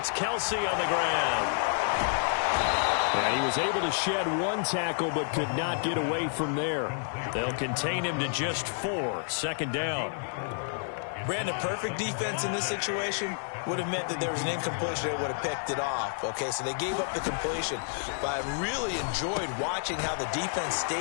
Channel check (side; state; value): right; silent; 58 dB below the other